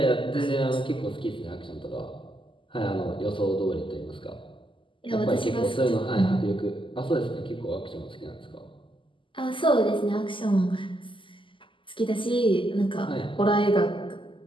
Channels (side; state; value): right; late; 0.25 ms